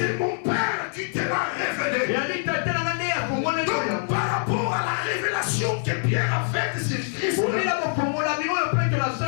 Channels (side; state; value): right; silent; digital silence